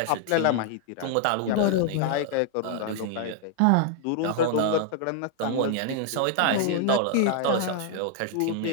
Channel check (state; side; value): different; both; correlation 0.00